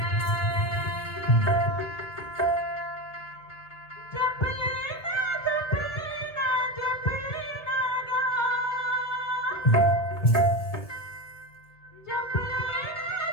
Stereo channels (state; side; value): late; right; 1.6 ms